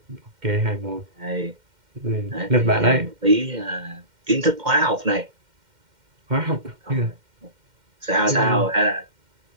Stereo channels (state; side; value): late; left; 2.1 ms